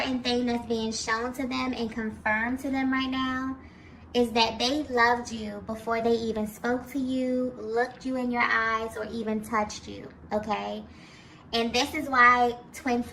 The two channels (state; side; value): identical; both; correlation 1.00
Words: thing that's being shown to them and confirmed to them right now is that they loved you before they even spoke to you, looked you in your eyes, or even touched you, okay? And this is why twin